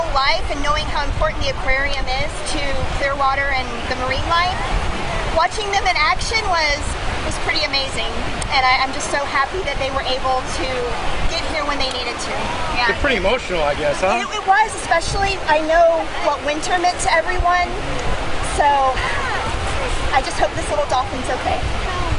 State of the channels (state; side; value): identical; both; correlation 1.00